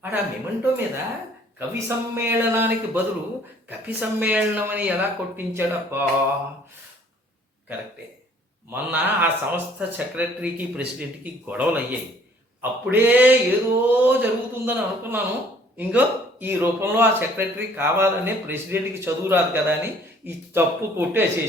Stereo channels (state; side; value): normal; both; correlation 0.58